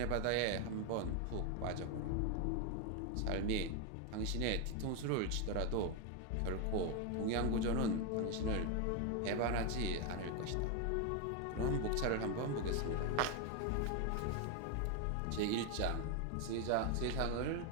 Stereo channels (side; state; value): both; different; correlation 0.01